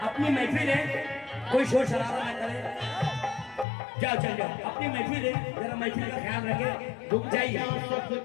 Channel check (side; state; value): right; drops out; at 3.7 s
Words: अपनी महफिल है, कोई शोर शराबा ना करे। जाओ चल जाओ, अपनी महफिल है, जरा महफिल का ख्याल रखे, रुक जाइए।